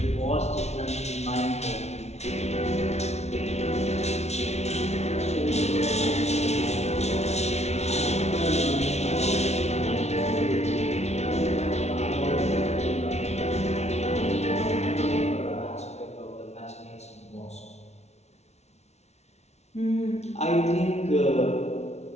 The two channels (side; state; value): right; late; 0.32 ms